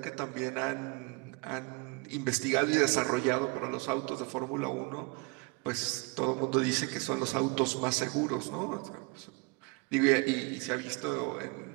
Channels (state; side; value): quieter; left; 29.6 dB